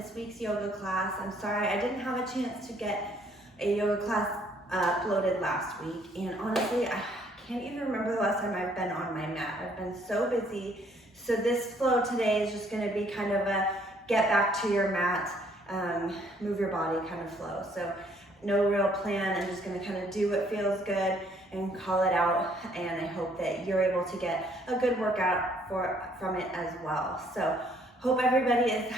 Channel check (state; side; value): normal; both; correlation 0.64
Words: week's yoga class. I'm sorry I didn't have a chance to get a yoga class uploaded last week, and honestly I can't even remember the last time I've been on my mat. I've been so busy. So this flow today is just going to be kind of a get back to your mat, move your body kind of flow. So no real plan. I'm just going to kind of do what feels good and call it out, and I hope that you're able to get a good workout from it as well. So hope everybody is